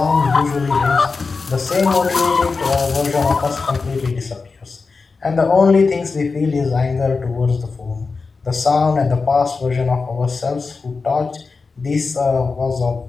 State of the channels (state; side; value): quieter; right; 4.4 dB